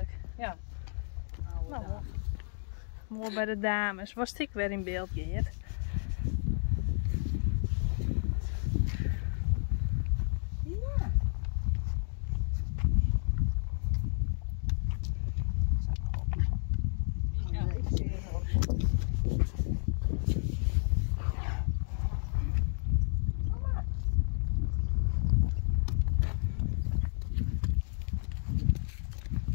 Ja. Nou, mooi bij de dames. Was ik weer in beeld, Geert? Ja. Ja, ik zie het ook.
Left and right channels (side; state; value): right; silent; 57 dB below the other